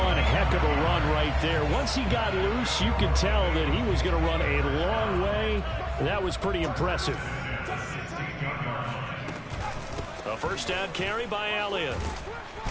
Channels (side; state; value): both; identical; correlation 1.00